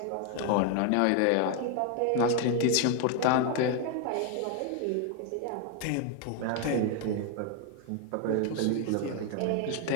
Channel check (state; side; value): different; both; correlation 0.01